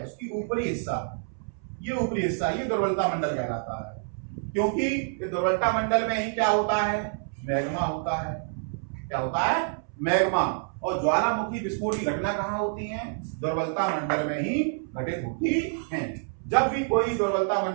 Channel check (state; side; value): silent; left; 60 dB below the other